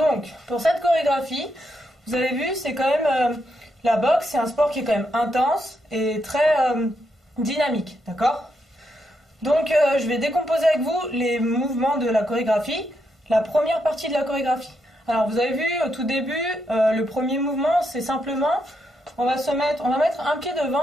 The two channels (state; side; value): normal; both; correlation 0.80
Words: pour cette chorégraphie, vous avez vu, c'est quand même... la boxe, c'est un sport qui est quand même intense et très dynamique, d'accord? Donc, je vais décomposer avec vous les mouvements de la chorégraphie, la première partie de la chorégraphie. Alors, vous avez vu, au tout début, le premier mouvement, c'est simplement, on va mettre un pied